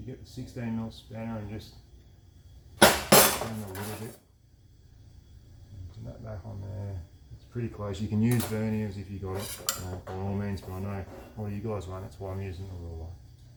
get the 16mm spanner and just turn a little bit. Put that back on there. It's pretty close. You can use verniers if you got it, by all means, but I know all you guys won't. That's why I'm using the ruler.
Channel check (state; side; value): identical; both; correlation 1.00